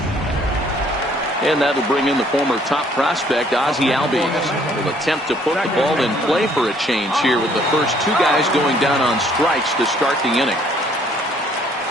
And that'll bring in the former top prospect, Ozzie Albies. Will attempt to put the ball in play for a change here with the first 2 guys going down on strikes to start the inning.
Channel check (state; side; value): normal; both; correlation 0.62